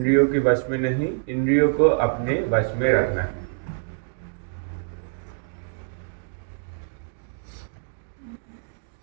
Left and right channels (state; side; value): silent; left; digital silence